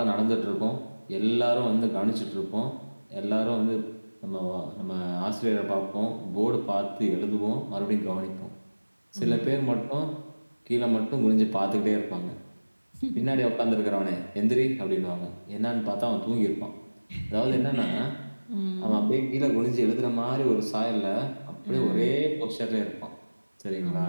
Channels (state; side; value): inverted; both; correlation -1.00